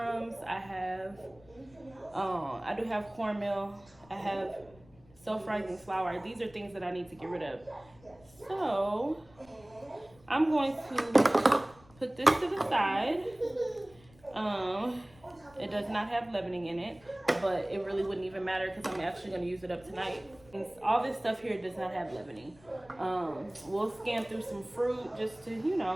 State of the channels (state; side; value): noise; left; rumble, 26 dB below the sound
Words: I do have cornmeal. I have self-rising flour. These are things that I need to get rid of. So I'm going to put this to the side. It does not have leavening in it, but it really wouldn't even matter because I'm actually going to use it up tonight. All this stuff here does not have leavening. We'll scan through some fruit just to, you